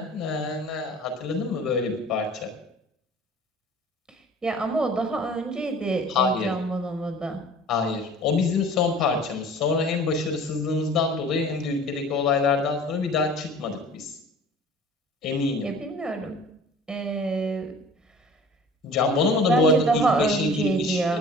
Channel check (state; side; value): normal; both; correlation 0.45